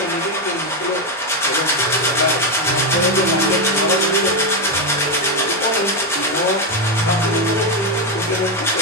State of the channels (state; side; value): normal; both; correlation 0.06